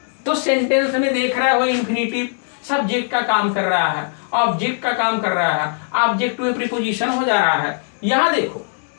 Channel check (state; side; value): silent; right; digital silence